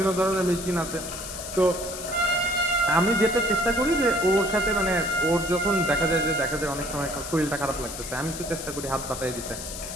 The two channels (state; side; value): noise; left; hiss, 9 dB below the sound